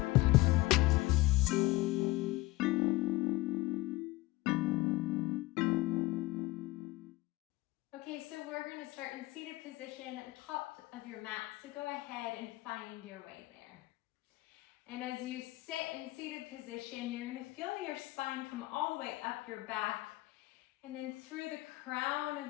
Okay, so we're going to start in seated position at the top of your mat, so go ahead and find your way there. And as you sit in seated position, you're going to feel your spine come all the way up your back and then through the crown of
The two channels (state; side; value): quieter; right; 19.9 dB